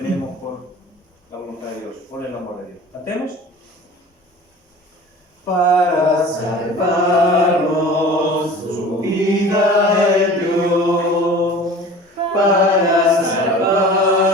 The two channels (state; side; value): normal; both; correlation 0.41